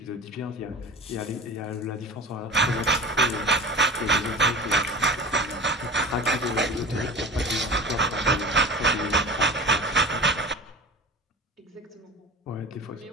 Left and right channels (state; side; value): normal; both; correlation 0.34